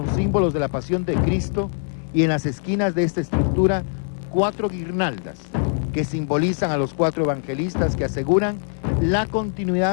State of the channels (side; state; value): right; silent; 59 dB below the other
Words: símbolos de la pasión de Cristo, y en las esquinas de esta estructura 4 guirnaldas que simbolizan a los 4 evangelistas que aseguran la